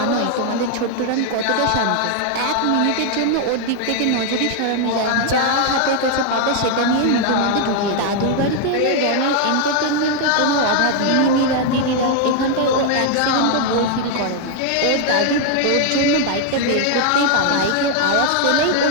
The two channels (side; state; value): both; different; correlation 0.00